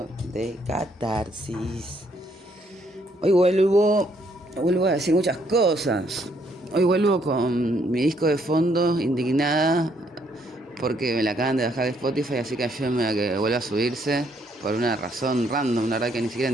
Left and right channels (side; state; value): both; normal; correlation 0.70